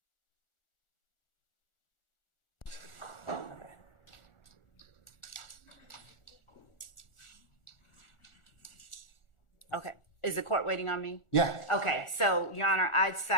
Okay. Is the court waiting on me? Yeah. Okay. So, Your Honor, I'd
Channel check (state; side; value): late; right; 1.4 ms